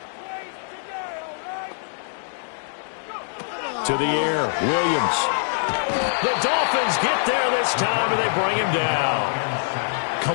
To the air, Williams. The Dolphins get there this time, and they bring him down.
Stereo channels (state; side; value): silent; right; digital silence